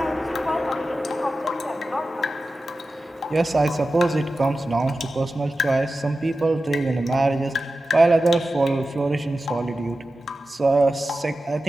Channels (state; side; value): normal; both; correlation 0.93